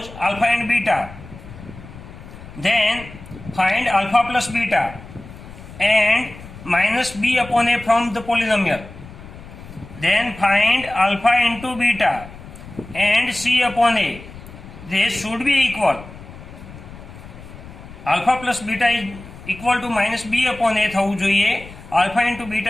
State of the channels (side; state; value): left; noise; rumble, 16 dB below the sound